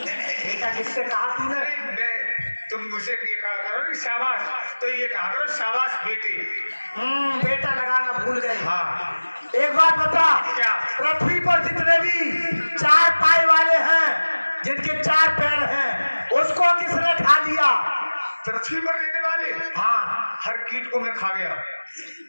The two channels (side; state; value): both; inverted; correlation -1.00